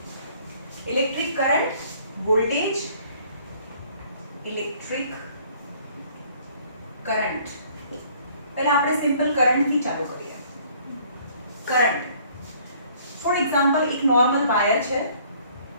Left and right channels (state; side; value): inverted; both; correlation -0.58